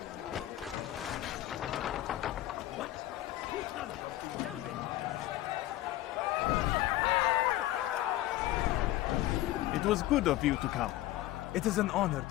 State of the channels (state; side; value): quieter; right; 15.2 dB